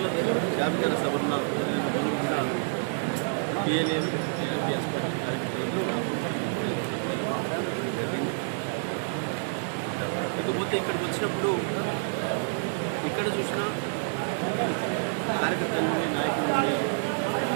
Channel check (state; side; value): silent; left; digital silence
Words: జాబితా సభన్న జరిగిన రోజు కూడా పిఎల్ఏను టీఆర్పీఎస్ పార్టీ కార్యకర్తలు జరిగింది. ఇకపోతే ఇక్కడికి వచ్చినప్పుడు ఇక్కడ చూసినా కార్యకర్తల నుండి నాయకుల నుండి